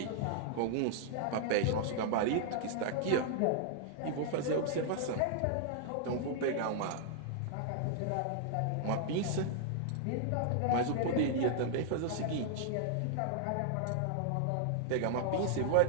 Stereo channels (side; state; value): both; different; correlation -0.01